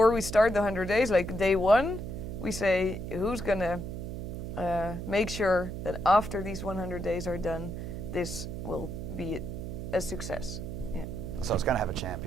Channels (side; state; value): right; noise; hum, 6 dB below the sound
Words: we start the 100 days, like day one, we say who's gonna make sure that after these 100 days are done, this will be a success. Yeah. So it's going to have a